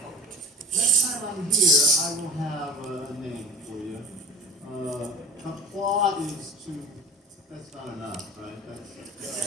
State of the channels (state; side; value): normal; both; correlation 0.40